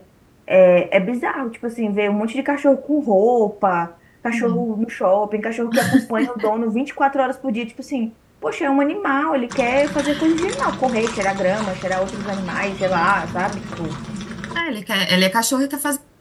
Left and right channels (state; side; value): identical; both; correlation 1.00